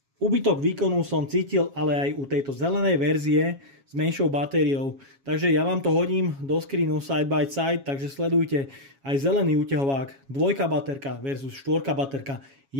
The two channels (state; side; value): late; left; 7.3 ms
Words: Úbytok výkonu som cítil ale aj u tejto zelenej verzie s menšou batériou. Takže ja vám to hodím do screenu side by side, takže sledujte aj zelený úťahovák, 2 baterka versus 4 baterka.